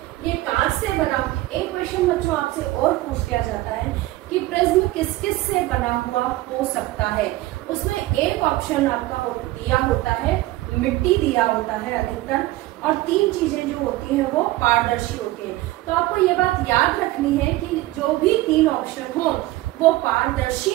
ये कांच से बना, एक क्वेश्चन बच्चों आपसे और पूछ लिया जाता है कि प्रिज्म किस किस से बना हुआ हो सकता है। उसमें एक ऑप्शन आपका दिया होता है, मिट्टी दिया होता है अधिकतर, और 3 चीजें जो होती हैं वो पारदर्शी होती हैं। तो आपको ये बात याद रखनी है कि जो भी 3 ऑप्शन हो वो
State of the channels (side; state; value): left; quieter; 17.6 dB